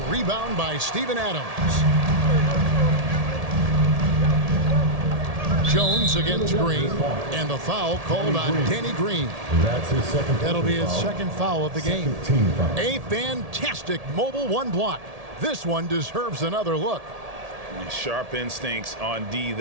rebound by Steven Adams. Jones against Green. And the foul called on Danny Green. That's his second. That'll be his second foul of the game. A fantastic mobile 1 block. This one deserves another look. Sharp instincts on D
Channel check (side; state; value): left; late; 1.7 ms